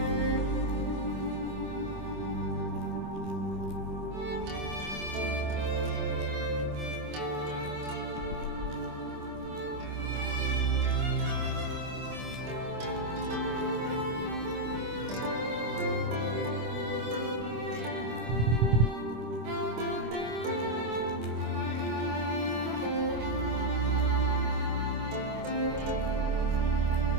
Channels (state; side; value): late; left; 25 ms